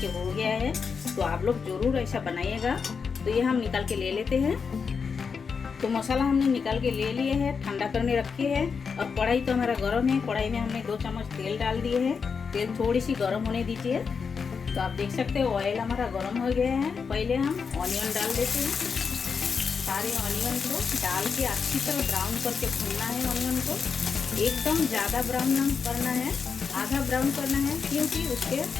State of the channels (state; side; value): quieter; right; 5.7 dB